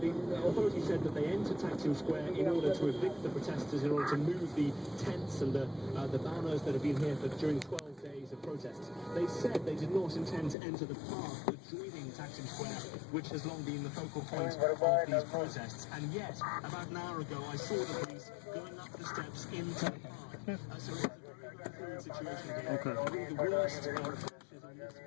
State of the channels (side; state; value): right; drops out; at 10.6 s